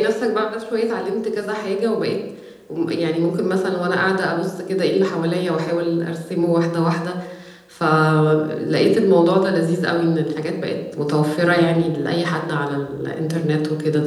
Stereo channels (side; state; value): both; identical; correlation 1.00